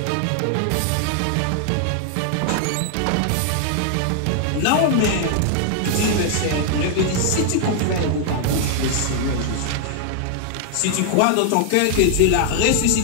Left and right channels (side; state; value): both; different; correlation 0.00